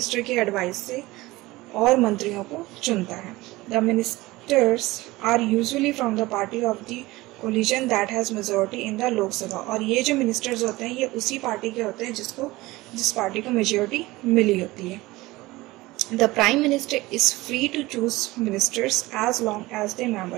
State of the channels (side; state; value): left; quieter; 19.8 dB